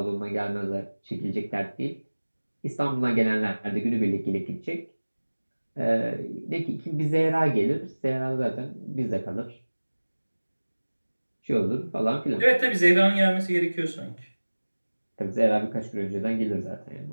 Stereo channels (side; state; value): both; inverted; correlation -1.00